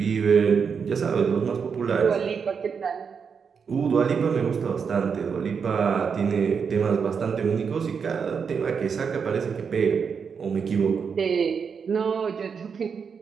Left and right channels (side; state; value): left; quieter; 6.2 dB